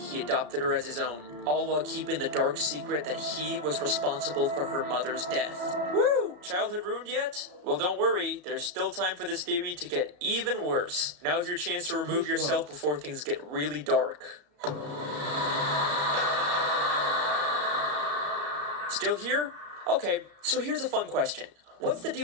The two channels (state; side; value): late; left; 34 ms